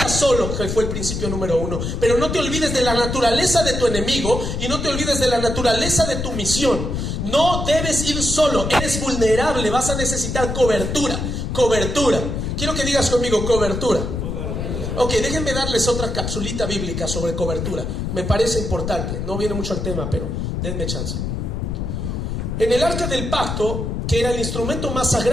solo, que fue el principio número 1. Pero no te olvides de la naturaleza de tu enemigo y no te olvides de la naturaleza de tu misión. No debes ir solo, eres vulnerable, vas a necesitar cobertura. Cobertura. Quiero que digas conmigo, cobertura. Ok, déjenme darles otra capsulita bíblica sobre cobertura. Me parece importante, no viene mucho al tema, pero denme chance. En el arca del pacto, que era el instrumento más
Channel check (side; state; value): left; noise; rumble, 3 dB below the sound